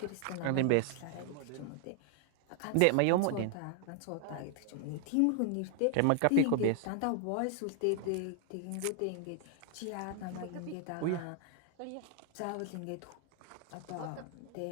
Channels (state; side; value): different; both; correlation 0.00